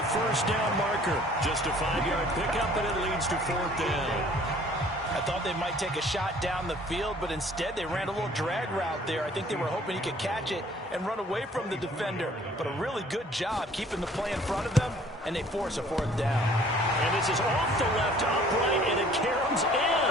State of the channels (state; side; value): normal; both; correlation 0.55